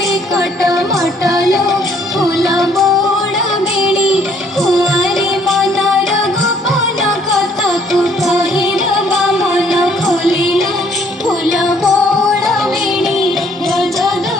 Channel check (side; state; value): both; normal; correlation 0.63